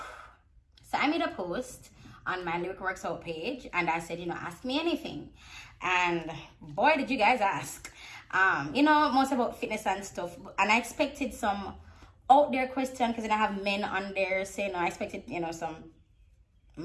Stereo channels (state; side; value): identical; both; correlation 1.00